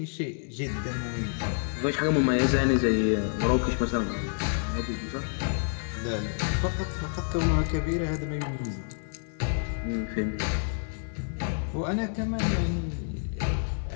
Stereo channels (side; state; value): right; silent; 59 dB below the other